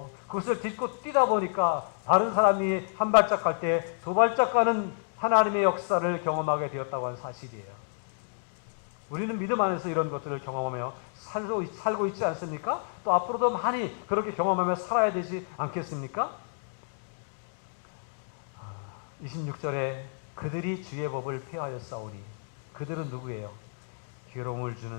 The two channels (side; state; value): right; silent; digital silence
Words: 그것을 딛고 뛰다 보니까 다른 사람이 한 발짝 갈 때 두 발짝 가는 하나님의 역사를 경험하게 되었다고 하는 사실이에요. 우리는 믿음 안에서 이런 것들을 경험하며 살고 있지 않습니까? 또 앞으로도 많이 그렇게 경험하며 살아야 되지 않겠습니까? 26절에 그들이 주의 법을 폐하였사오니 그들은 누구예요? 괴로움을 주는